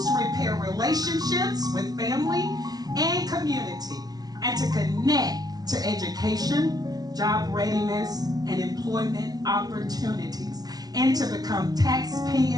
repair relationships with family and community, and to connect to education, job readiness, and employment opportunities, and to become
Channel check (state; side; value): late; left; 0.19 ms